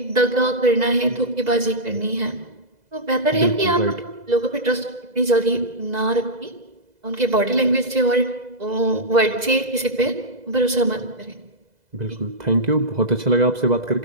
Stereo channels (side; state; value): left; late; 2.0 ms